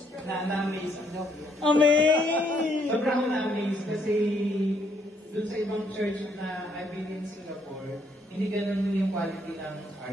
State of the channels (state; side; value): normal; both; correlation 0.70